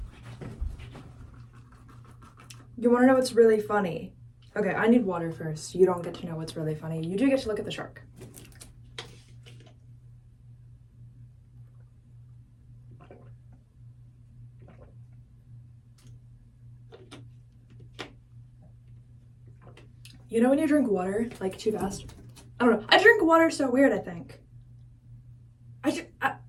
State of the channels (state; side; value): identical; both; correlation 1.00